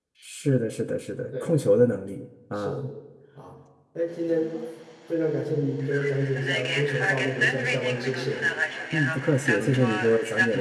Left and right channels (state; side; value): identical; both; correlation 1.00